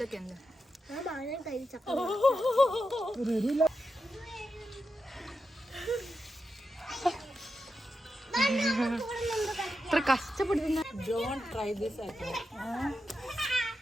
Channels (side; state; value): both; normal; correlation 0.88